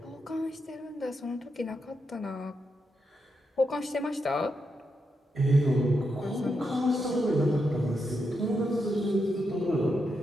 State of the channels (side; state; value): both; normal; correlation 0.84